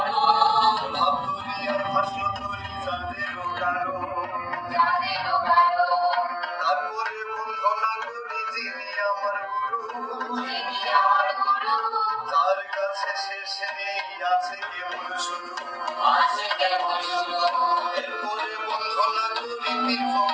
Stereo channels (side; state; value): both; identical; correlation 1.00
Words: ভাব ধরি আর ভাষ্য ধরি যাদেরও কারণ। তারপরে বন্ধন না করি যিনি আমার গুরু, তার কাছে শেষে নেই আছে কেবল শুরু। এরপরে বন্ধন না করি পীর